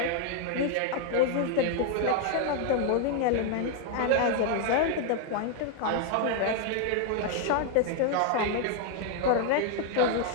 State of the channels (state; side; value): different; both; correlation 0.00